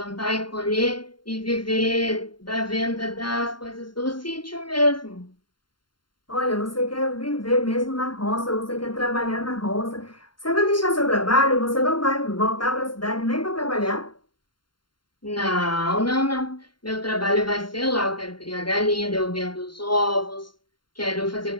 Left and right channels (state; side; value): late; right; 0.72 ms